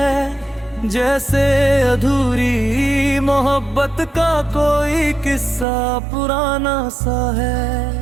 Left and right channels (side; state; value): left; drops out; at 5.7 s